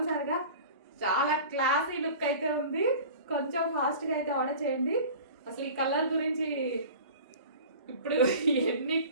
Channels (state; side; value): inverted; both; correlation -0.39